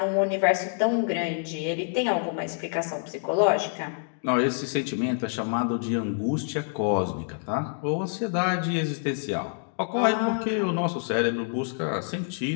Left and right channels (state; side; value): silent; right; digital silence